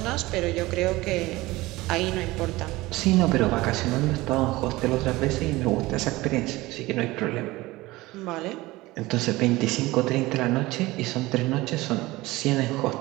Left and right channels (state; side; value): quieter; left; 19.7 dB